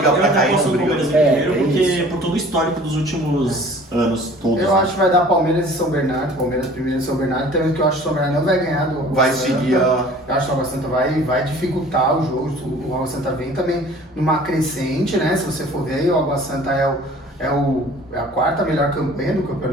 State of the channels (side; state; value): both; normal; correlation 0.48